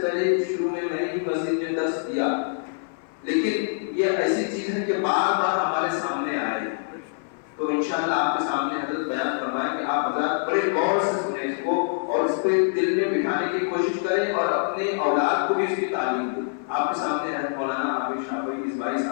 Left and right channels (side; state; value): right; silent; 58 dB below the other